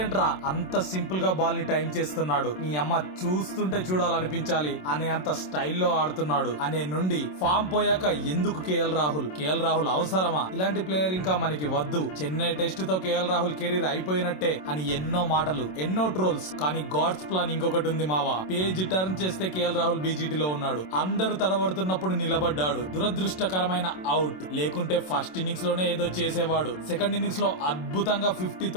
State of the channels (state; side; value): late; right; 27 ms